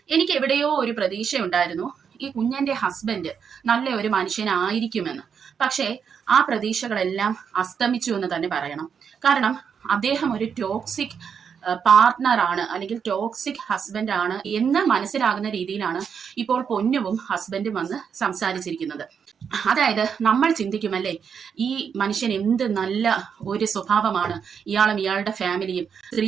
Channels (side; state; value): left; quieter; 7.0 dB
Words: എനിക്ക് എവിടെയോ ഒരു പ്രതീക്ഷ ഉണ്ടായിരുന്നു ഈ കുഞ്ഞന്റെ ഹസ്ബൻഡ് നല്ല ഒരു മനുഷ്യനായിരിക്കുമെന്ന്. പക്ഷേ ആ പ്രതീക്ഷകളെല്ലാം അസ്തമിച്ചു എന്ന് തന്നെ പറയണം. കാരണം അദ്ദേഹം ഒരു ടോക്സിക് പാർട്ട്ണറാണ്, അല്ലെങ്കിൽ ടോക്സിക് ഹസ്ബൻഡ് ആണ് എന്ന് മനസ്സിലാകുന്ന രീതിയിലാണ് ഇപ്പോൾ പൊന്നുവും ഹസ്ബൻഡും വന്ന് സംസാരിച്ചിരിക്കുന്നത്. അതായത് നമ്മൾ ചിന്തിക്കുമല്ലേ, ഈ മനുഷ്യൻ എന്ത് നല്ല ഒരു സ്വഭാവമാണ്, ഇയാളും ഇയാളുടെ ഫാമിലിയും